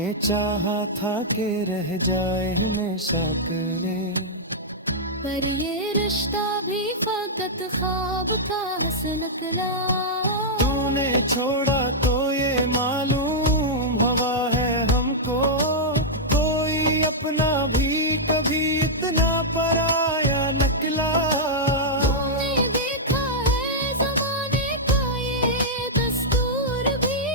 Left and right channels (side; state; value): both; normal; correlation -0.08